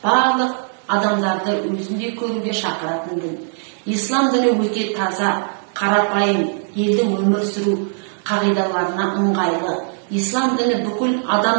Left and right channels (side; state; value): left; silent; digital silence